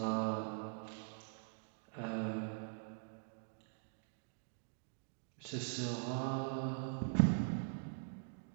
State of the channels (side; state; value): left; silent; digital silence